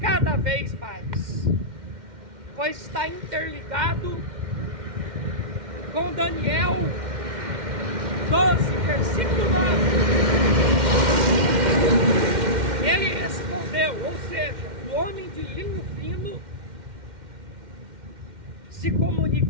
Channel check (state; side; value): late; left; 2.1 ms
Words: vez mais. Pois está interligado com Daniel 12, versículo 9. Ele respondeu, ou seja, o homem de linho fino se